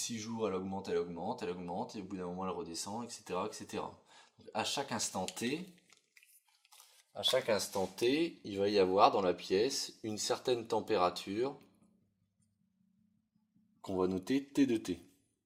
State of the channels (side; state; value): both; identical; correlation 1.00